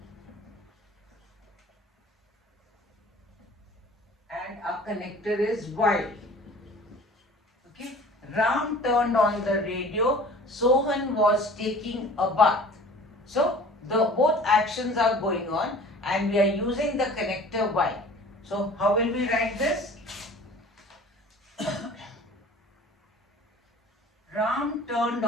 And our connector is while. Okay. Ram turned on the radio. Sohan was taking a bath. So the both actions are going on and we are using the connector while. So how will we write this? Ram turned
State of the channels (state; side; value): normal; both; correlation 0.46